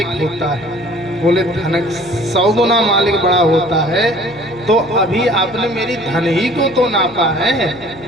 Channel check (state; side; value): noise; left; hum, 23 dB below the sound